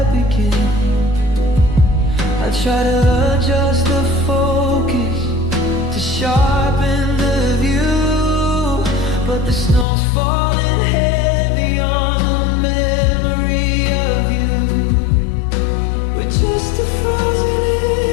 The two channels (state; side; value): drops out; right; at 9.9 s